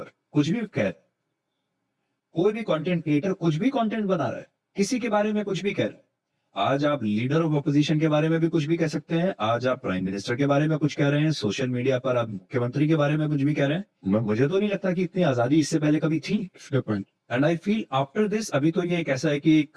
कुछ भी कह, कोई भी कंटेंट क्रिएटर कुछ भी कंटेंट बना रहा है, किसी के बारे में कुछ भी कह रहा है. आज आप लीडर ऑफ ऑपोजिशन के बारे में भी कुछ भी कह सकते हैं, आज आप प्राइम मिनिस्टर के बारे में कुछ कह रहे हैं, सोशल मीडिया पर आप मुख्यमंत्री के बारे में कुछ भी कह रहे हैं. मुझे तो नहीं लगता कि इतनी आजादी इससे पहले कभी थी. And I feel after this, अभी तो ये एक ऐसा है कि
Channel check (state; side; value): identical; both; correlation 1.00